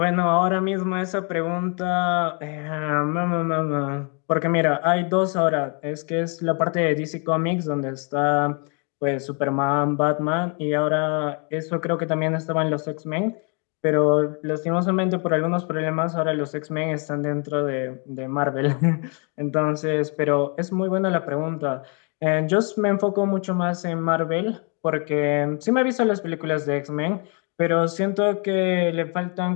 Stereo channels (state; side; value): quieter; right; 37.0 dB